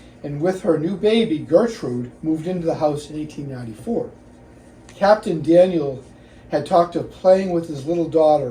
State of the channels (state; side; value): identical; both; correlation 1.00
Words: and with her new baby Gertrude moved into the house in 1894. Captain Daniel had talked of playing with his little